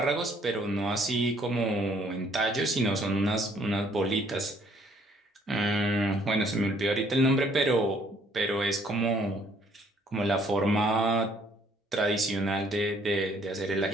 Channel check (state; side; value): normal; both; correlation 0.63